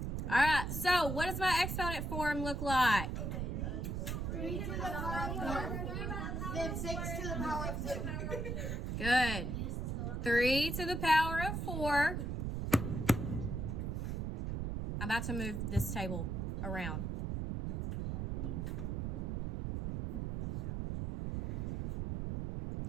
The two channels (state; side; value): noise; right; rumble, 2 dB below the sound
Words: All right, so what does my exponent form look like? 3 to the power of 4. Then 6 to the power of 2. Good. 3 to the power of 4. I'm about to move this table around.